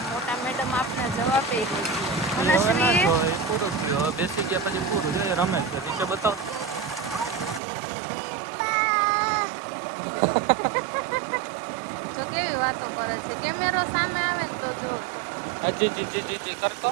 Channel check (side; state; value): left; drops out; at 7.6 s